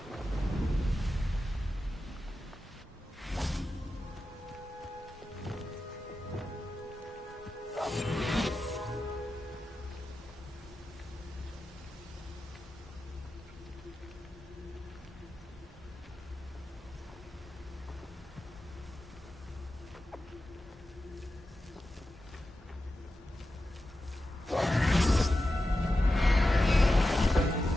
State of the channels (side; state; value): both; normal; correlation 0.92